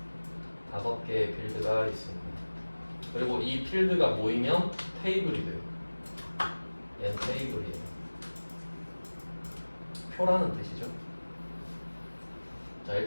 5개의 필드가 있습니다. 그리고 이 필드가 모이면 테이블이 돼요. 얘는 테이블이에요. 표라는 뜻이죠. 자,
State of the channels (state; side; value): inverted; both; correlation -1.00